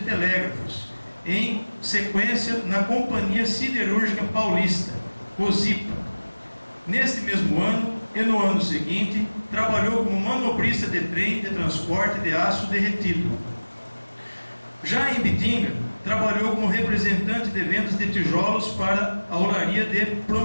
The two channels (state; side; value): inverted; both; correlation -1.00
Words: em sequência na Companhia Siderúrgica Paulista, COSIPA. Neste mesmo ano e no ano seguinte, trabalhou como manobrista de trem de transporte de aço derretido. Já em Ibitinga, trabalhou como representante de vendas de tijolos para a Olaria de